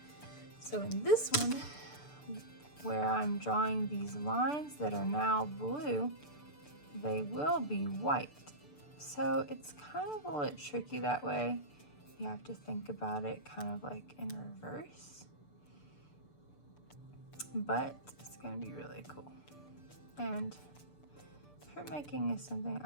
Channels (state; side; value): late; right; 6.8 ms